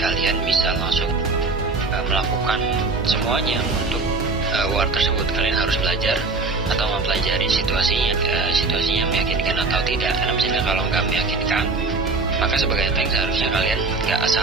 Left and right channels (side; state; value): left; quieter; 3.8 dB